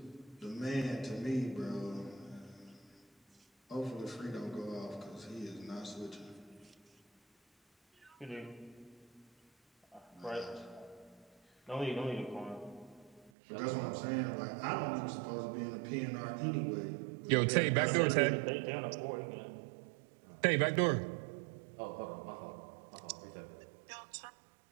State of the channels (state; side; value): drops out; left; at 13.3 s